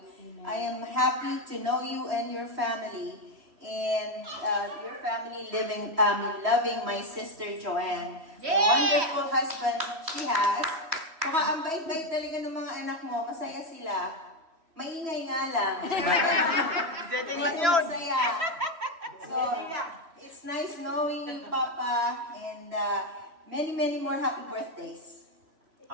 I am happy to know you and your family. And your family loving my sister Joanne. The wonderful husband she has. Saka ang bait-bait talaga ng mga anak mo, masaya sila. Maingay nga lang. Masaya. So, it's nice knowing you, Papa, and many, many more happy birthdays.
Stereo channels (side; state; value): left; late; 3.1 ms